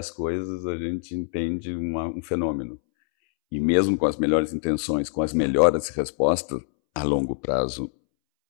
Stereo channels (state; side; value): silent; right; 62 dB below the other